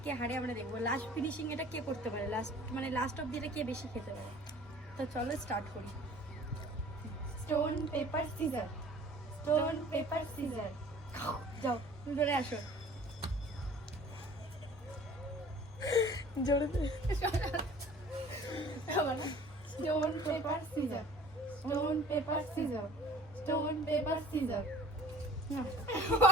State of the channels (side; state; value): both; normal; correlation 0.49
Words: কে হারে আমরা দেখবো। লাস্ট ফিনিশিং এটা কে করতে পারে, লাস্ট অব্দি এটা কে বেশি খেতে পারে। তো চলো স্টার্ট করি। Stone paper scissor, stone paper scissor. যাও ধরে আসো। জোরে stone paper scissor, stone paper scissor, stone paper scissor.